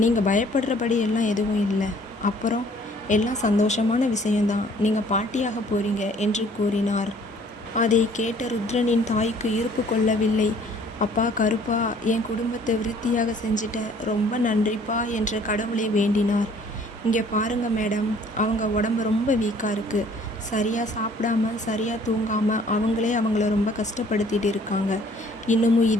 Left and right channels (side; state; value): both; normal; correlation 0.57